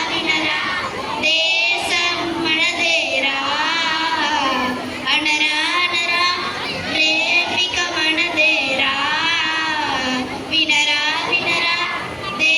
వినరా దేశం మనదేరా, అనరా అనరా ప్రేమిక మనదేరా. వినరా వినరా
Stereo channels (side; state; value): both; identical; correlation 1.00